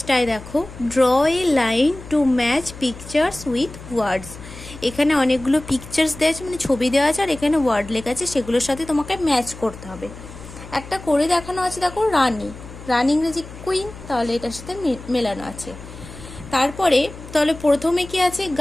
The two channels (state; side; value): noise; left; hum, 15 dB below the sound